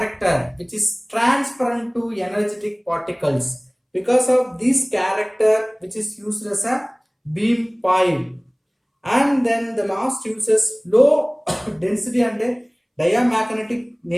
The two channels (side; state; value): both; identical; correlation 1.00